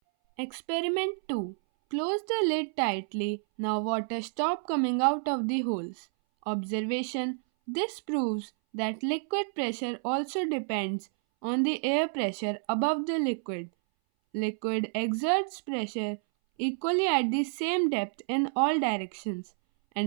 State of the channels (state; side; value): silent; left; 58 dB below the other